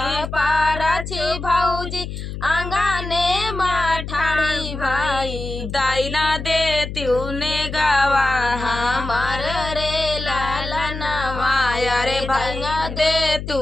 पाराछी भौजी अंगने माठाड़ी भाई दाइना दे तूने गावा हमार रे लाला नवा अरे भैया दे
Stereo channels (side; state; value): left; noise; hum, 7 dB below the sound